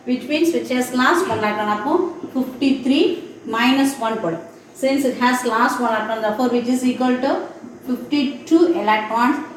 which means which has lost 1 electron. 53 minus 1. Since it has lost 1 electron, therefore which is equal to 52 electrons,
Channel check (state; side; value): identical; both; correlation 1.00